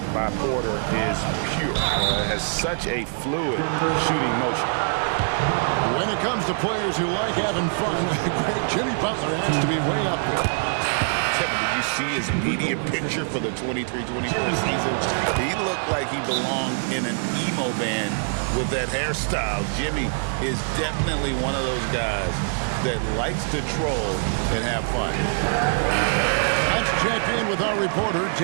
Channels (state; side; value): silent; left; digital silence